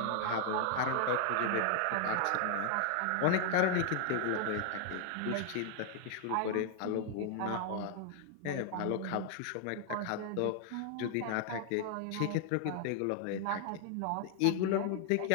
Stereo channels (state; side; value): different; both; correlation 0.00